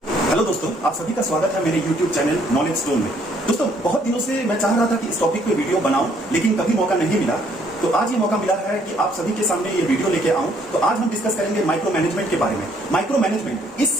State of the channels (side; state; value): both; normal; correlation 0.65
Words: Hello दोस्तों, आप सभी का स्वागत है मेरे YouTube चैनल नॉलेज स्टोन में। दोस्तों, बहुत दिनों से मैं चाह रहा था कि इस टॉपिक पे वीडियो बनाऊं, लेकिन कभी मौका नहीं मिला। तो आज ये मौका मिला है कि आप सभी के सामने ये वीडियो लेके आऊं। तो आज हम डिस्कस करेंगे माइक्रो मैनेजमेंट के बारे में। माइक्रो मैनेजमेंट इस